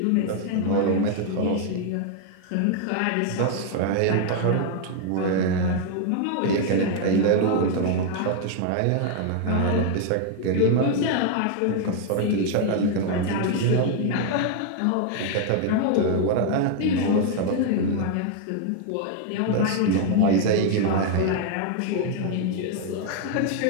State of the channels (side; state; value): both; different; correlation 0.00